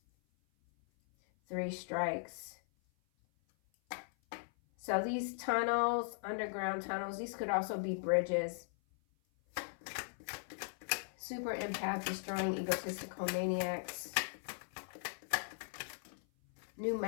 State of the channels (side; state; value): right; silent; 52 dB below the other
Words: 3 strikes. So these tunnels, underground tunnels, these could also be bridges. Super empath destroying egotistical maniacs. New